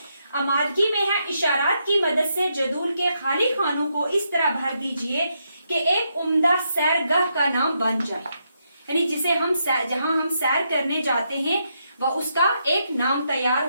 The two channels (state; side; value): inverted; both; correlation -0.80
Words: आमादगी में है, इशारात की मदद से जदूल के खाली खानों को इस तरह भर दीजिए कि एक उम्दा सैरगाह का नाम बन जाए। यानी जिसे हम जहां हम सैर करने जाते हैं वह उसका एक नाम तैयार